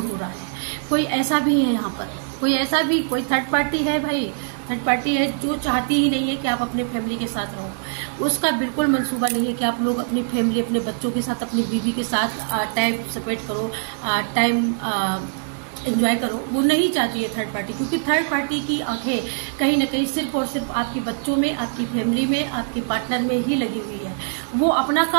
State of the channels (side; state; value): left; silent; digital silence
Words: हो रहा है। कोई ऐसा भी है यहाँ पर, कोई थर्ड पार्टी है भाई, थर्ड पार्टी है जो चाहती ही नहीं है कि आप अपने फैमिली के साथ रहो। उसका बिल्कुल मंसूबा नहीं है कि आप लोग अपनी फैमिली, अपने बच्चों के साथ, अपनी बीवी के साथ टाइम स्पेंड करो, टाइम एंजॉय करो। वो नहीं चाहती है थर्ड पार्टी, क्योंकि थर्ड पार्टी की आंखें कहीं न कहीं सिर्फ और सिर्फ आपके बच्चों में, आपकी फैमिली में, आपके पार्टनर में ही लगी हुई है। वो अपना